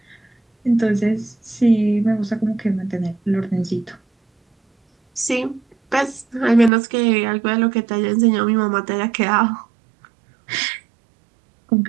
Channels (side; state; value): left; drops out; at 6.7 s